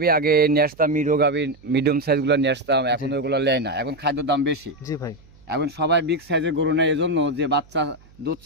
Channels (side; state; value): right; noise; hum, 27 dB below the sound